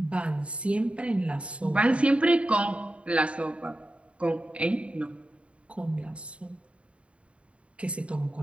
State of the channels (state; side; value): late; left; 0.061 ms